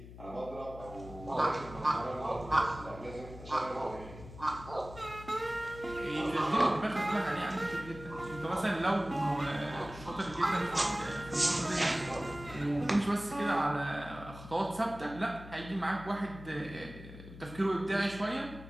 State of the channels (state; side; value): noise; left; hum, 15 dB below the sound